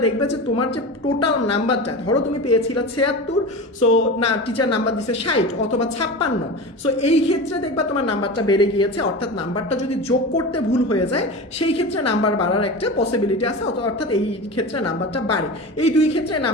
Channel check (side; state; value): both; normal; correlation 0.29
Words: দেখবে যে তোমার যে টোটাল নাম্বারটা, ধরো তুমি পেয়েছিলে 76, সো না টিচার নাম্বার দিচ্ছে 60 অথবা 56, সো এই ক্ষেত্রে দেখবা তোমার নাম্বারটা বেড়ে গিয়েছে, অর্থাৎ নাম্বারটা যদি যোগ করতে ভুল হয়ে যায় সেই ক্ষেত্রে নাম্বার বাড়ার একটা পসিবিলিটি আছে, অর্থাৎ এই ক্ষেত্রে নাম্বারটা বাড়ে। এই দুই ক্ষেত্রে